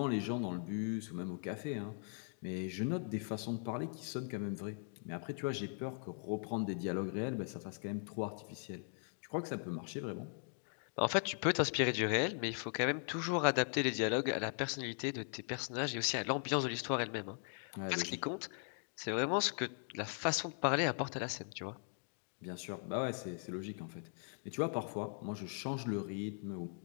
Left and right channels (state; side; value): silent; right; 51 dB below the other